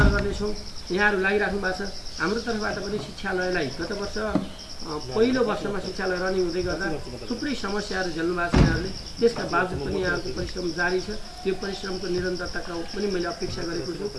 गर्नेछौँ। यहाँहरू लागिराख्नु भएको छ। हाम्रो तर्फबाट पनि शिक्षालयलाई गत वर्ष पहिलो वर्षमा शिक्षालय रनिङ हुँदै गर्दा थुप्रै समस्याहरू झेल्नु भएको छ यहाँहरूले। त्यसका बावजुद पनि यहाँको परिश्रम जारी छ। यो परिश्रमको निरन्तरताका पनि मैले अपेक्षा गरेको छु।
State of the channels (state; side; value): identical; both; correlation 1.00